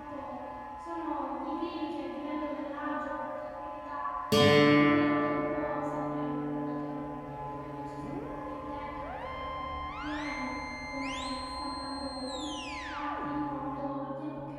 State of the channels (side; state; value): both; identical; correlation 1.00